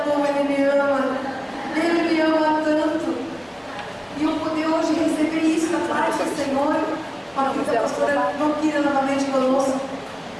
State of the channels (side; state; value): both; identical; correlation 1.00